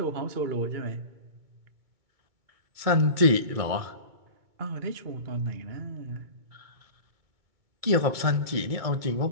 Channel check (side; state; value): left; late; 2.2 ms